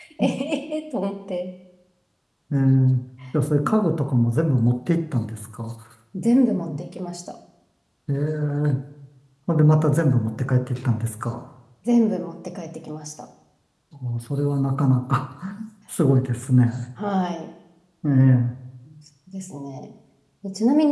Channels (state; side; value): identical; both; correlation 1.00